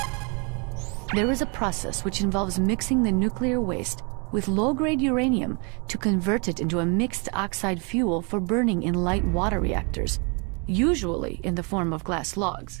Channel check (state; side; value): quieter; left; 34.0 dB